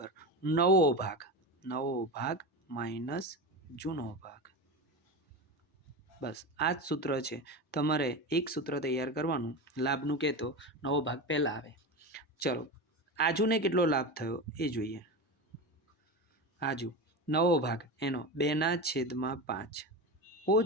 નવો ભાગ માઇનસ જૂનો ભાગ. બસ આ જ સૂત્ર છે. તમારે એક સૂત્ર તૈયાર કરવાનું. લાભનું કહેતો નવો ભાગ પહેલાં આવે. ચલો, આજુને કેટલો લાભ થયો એ જોઈએ. આજુ નવો ભાગ એનો 2/5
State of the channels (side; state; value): both; normal; correlation 0.23